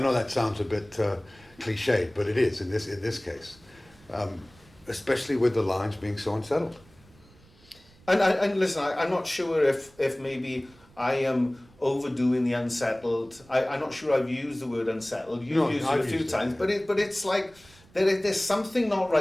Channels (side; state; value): right; noise; rumble, 27 dB below the sound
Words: know that sounds a bit cliched, but it is in this case, especially with the lines being so unsettled. And listen, I'm not sure if maybe I am overdoing the unsettled. I'm not sure I've used the word unsettled. You've used it a few times, but it's like there's something not